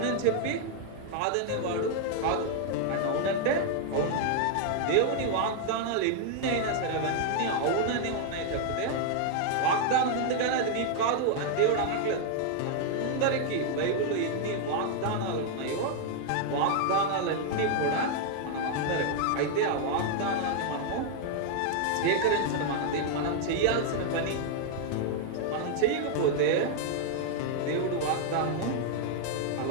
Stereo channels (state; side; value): different; both; correlation 0.00